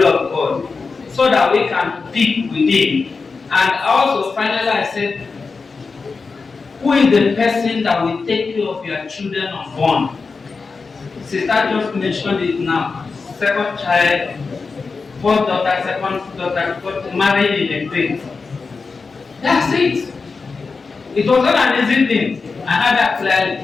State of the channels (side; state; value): right; quieter; 4.5 dB